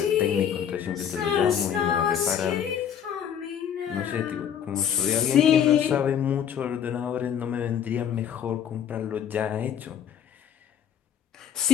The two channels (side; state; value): right; quieter; 8.8 dB